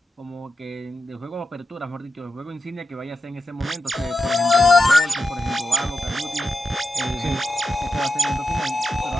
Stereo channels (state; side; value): normal; both; correlation 0.90